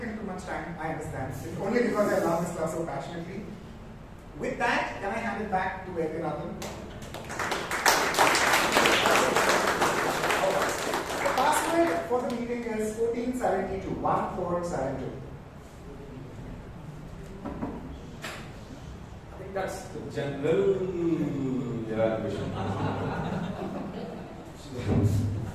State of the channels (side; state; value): both; identical; correlation 1.00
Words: too much time, I understand. It's only because I love this class so passionately. With that, can I hand it back to Vaidyanathan? The password for the meeting is 1472, 1472. I think that's the general evaluation.